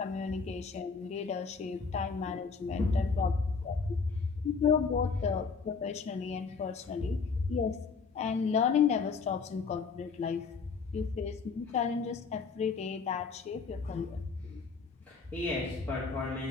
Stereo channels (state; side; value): quieter; right; 5.1 dB